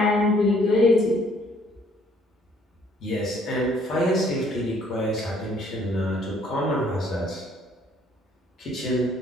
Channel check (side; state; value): both; normal; correlation 0.63